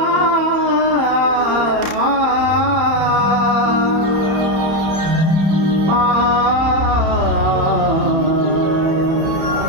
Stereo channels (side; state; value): left; late; 31 ms